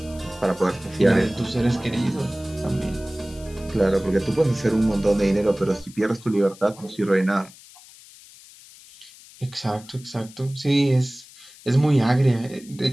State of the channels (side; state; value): left; noise; hiss, 22 dB below the sound